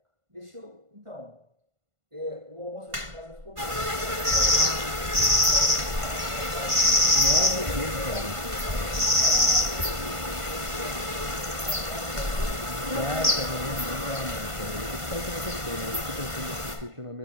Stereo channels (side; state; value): left; late; 1.5 ms